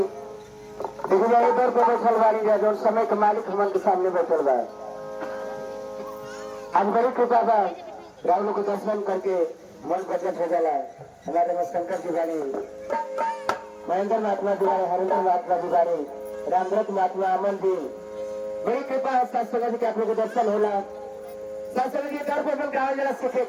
देखिए जाए इधर को बैठल वाली जाए जो समय के मालिक हमन के सामने बैठल बा। आज बड़ी कृपा बा, राहुल को दर्शन करके मन प्रकट हो जाला। हमारे शंकर जी बानी, महेंद्र महात्मा दुआरे, हरेंद्र महात्मा दुआरे, रामव्रत महात्मा अमन जी, बड़ी कृपा है सत्संग जी के आप लोग को दर्शन होला। सत्संग जी दर पर गाँव जरा सीखे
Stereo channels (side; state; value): both; identical; correlation 1.00